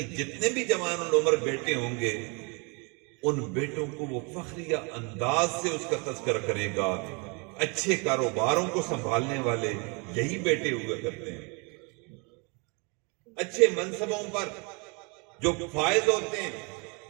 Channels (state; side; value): quieter; left; 32.3 dB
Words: جتنے بھی جوان العمر بیٹے ہوں گے ان بیٹوں کو وہ فخریہ انداز سے اس کا تذکرہ کرے گا۔ اچھے کاروباروں کو سنبھالنے والے یہی بیٹے ہوا کرتے ہیں، اچھے منصبوں پر جو فائز ہوتے ہیں۔